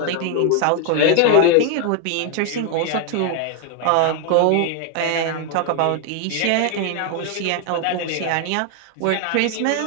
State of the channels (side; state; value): both; different; correlation 0.01